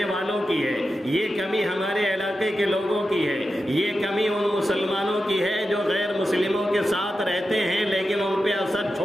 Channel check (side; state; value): both; normal; correlation 0.90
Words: والوں کی ہے، یہ کمی ہمارے علاقے کے لوگوں کی ہے، یہ کمی ان مسلمانوں کی ہے جو غیر مسلموں کے ساتھ رہتے ہیں لیکن ان پہ اثر